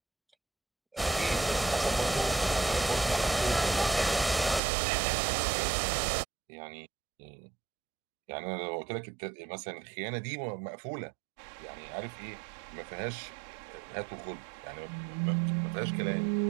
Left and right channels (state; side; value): drops out; left; at 4.6 s